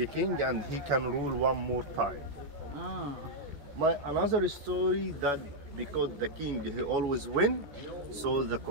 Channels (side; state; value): left; late; 14 ms